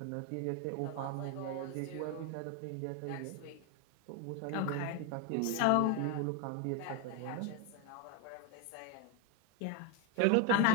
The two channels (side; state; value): both; different; correlation 0.02